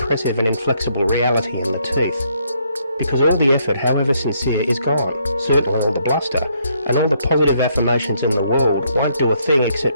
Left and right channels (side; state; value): both; inverted; correlation -0.71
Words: and inflexible reality in the teeth. Because all the effort, however sincere, is gone, certainly all the bluster, and all the positive affirmations in the world won't do a thing